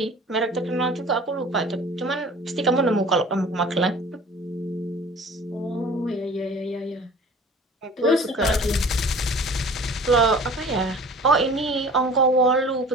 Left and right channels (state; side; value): normal; both; correlation 0.45